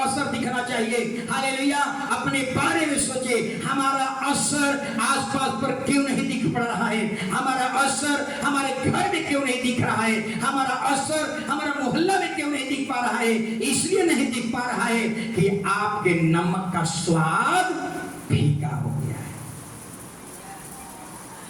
असर दिखना चाहिए। हालेलुया! अपने बारे में सोचे, हमारा असर आसपास पर क्यों नहीं दिख पड़ रहा है? हमारा असर हमारे घर में क्यों नहीं दिख रहा है? हमारा असर हमारा मोहल्ला में क्यों नहीं दिख पा रहा है? इसलिए नहीं दिख पा रहा है कि आपके नमक का स्वाद फीका हो गया है।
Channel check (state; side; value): identical; both; correlation 1.00